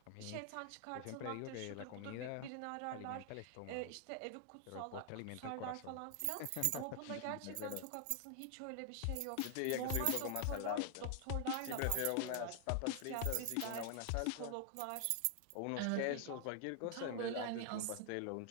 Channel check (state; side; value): different; both; correlation 0.00